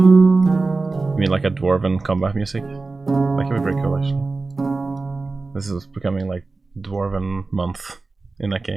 mean like a Dwarven combat music? That could be pretty cool actually. This is becoming like Dwarven month in that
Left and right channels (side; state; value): left; quieter; 3.7 dB